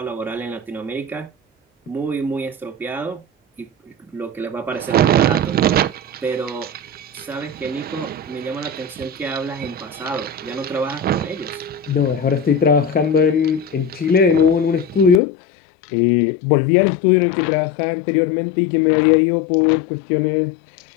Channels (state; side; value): drops out; right; at 15.2 s